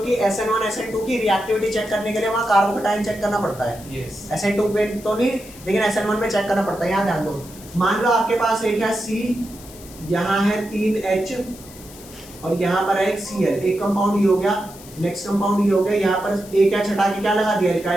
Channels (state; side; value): noise; left; hiss, 19 dB below the sound